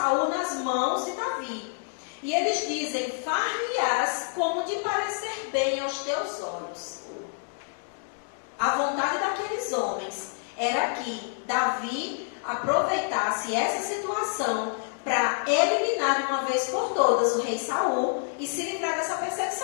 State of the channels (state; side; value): silent; right; digital silence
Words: nas mãos de Davi. E eles dizem: far-lhe-ás como te parecer bem aos teus olhos. A vontade daqueles homens era que Davi aproveitasse essa situação para eliminar de uma vez por todas o rei Saul e se livrar dessa